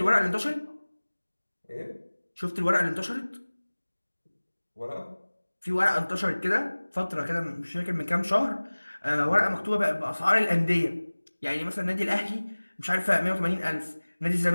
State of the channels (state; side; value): inverted; both; correlation -1.00